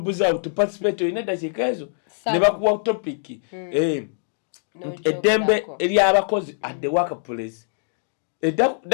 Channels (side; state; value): right; silent; digital silence